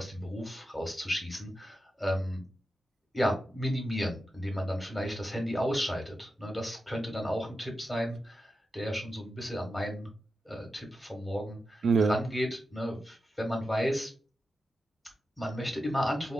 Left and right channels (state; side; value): normal; both; correlation 0.90